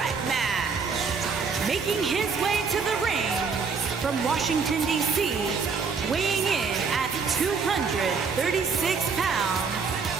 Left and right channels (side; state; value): left; quieter; 5.3 dB